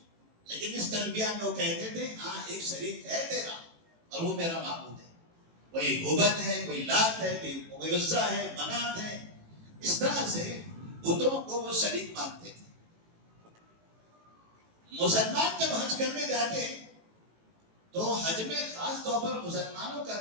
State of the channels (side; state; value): left; late; 18 ms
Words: لیکن اس تلبیہ میں وہ کہتے تھے ہاں ایک شریک ہے تیرا اور وہ میرا معبود ہے. کوئی ہبل ہے، کوئی لات ہے، کوئی عزا ہے، منات ہے. اس طرح سے بتوں کو وہ شریک مانتے تھے. مسلمان جب حج کرنے جاتے تو حج میں خاص طور پر مسلمانوں کا